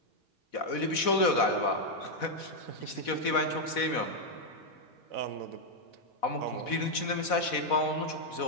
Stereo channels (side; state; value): right; late; 4.1 ms